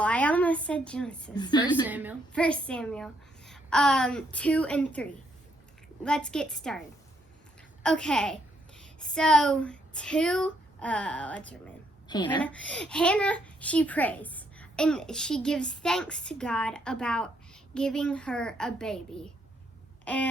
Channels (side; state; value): both; normal; correlation 0.73